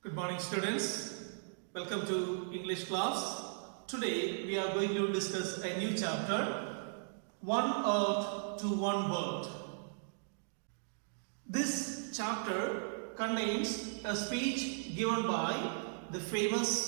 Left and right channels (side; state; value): left; silent; digital silence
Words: Good morning, students. Welcome to English class. Today we are going to discuss a new chapter, One Earth to One World. This chapter contains a speech given by the